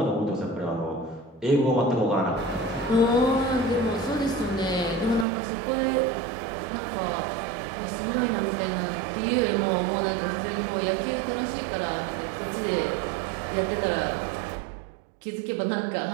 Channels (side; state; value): left; drops out; at 5.2 s